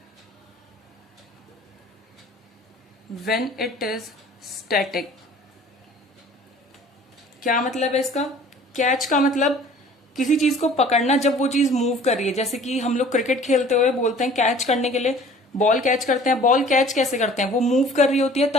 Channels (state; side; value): normal; both; correlation 0.49